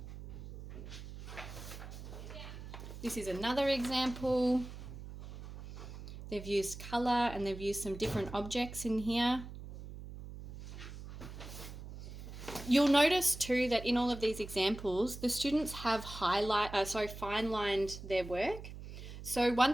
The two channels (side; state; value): right; noise; hum, 12 dB below the sound